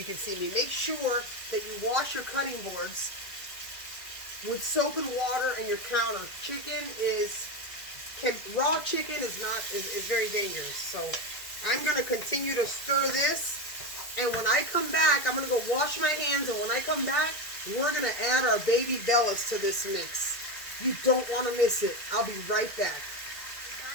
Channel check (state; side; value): late; right; 1.9 ms